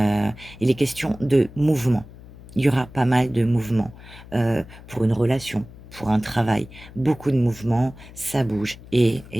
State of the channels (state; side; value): noise; left; hum, 18 dB below the sound